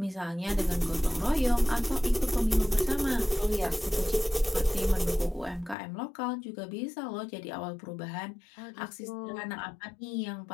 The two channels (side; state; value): right; drops out; at 5.8 s